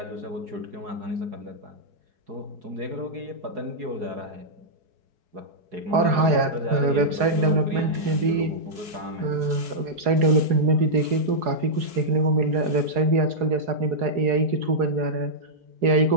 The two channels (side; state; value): left; late; 4.8 ms